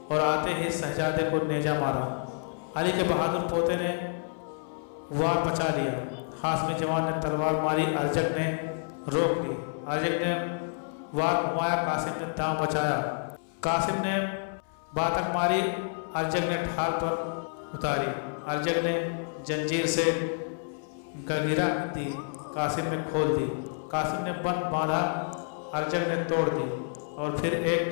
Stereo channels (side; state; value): right; silent; 59 dB below the other